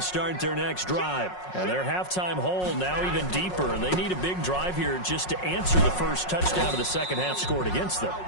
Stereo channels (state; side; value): late; right; 5.5 ms